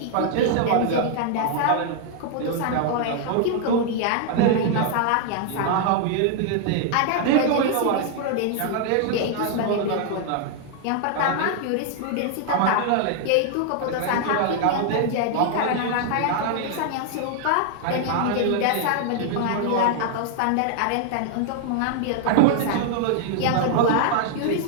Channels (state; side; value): different; both; correlation 0.00